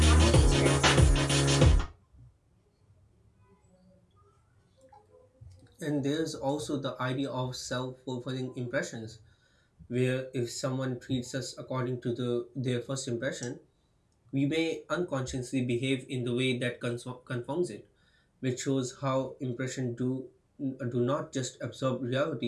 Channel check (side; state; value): both; identical; correlation 1.00